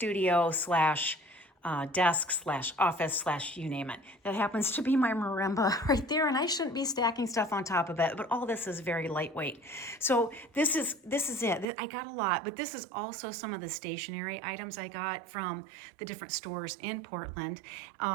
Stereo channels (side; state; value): left; drops out; at 11.7 s